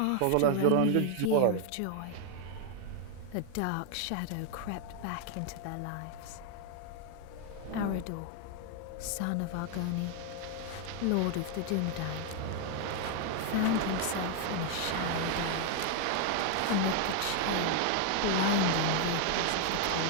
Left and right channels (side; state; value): both; different; correlation 0.00